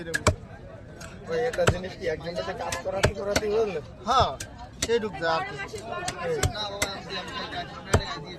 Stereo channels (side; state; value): both; identical; correlation 1.00